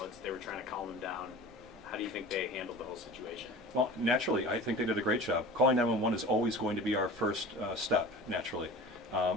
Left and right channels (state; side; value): normal; both; correlation 0.38